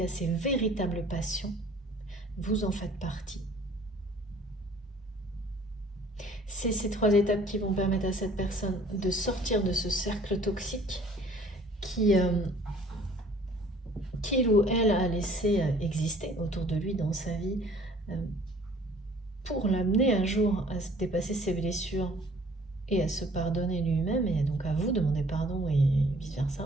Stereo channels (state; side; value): normal; both; correlation 0.54